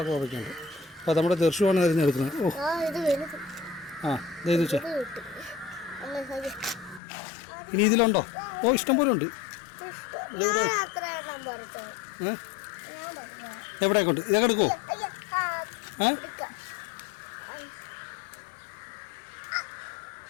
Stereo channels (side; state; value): right; drops out; at 7.0 s